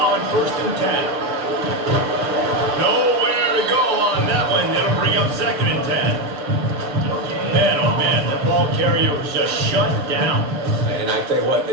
1st and 10. Nowhere to go on that one. That'll bring up 2nd and 10. Man, oh man, the ball carrier was just shut down. And I tell you what,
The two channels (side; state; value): left; late; 6.8 ms